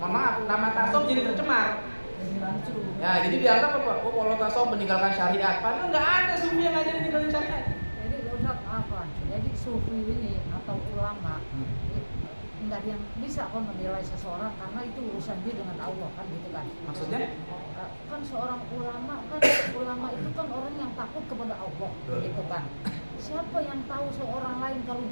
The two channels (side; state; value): both; inverted; correlation -1.00